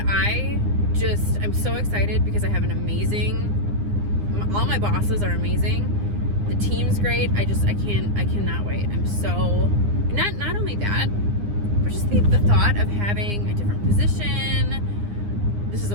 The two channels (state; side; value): late; left; 9.8 ms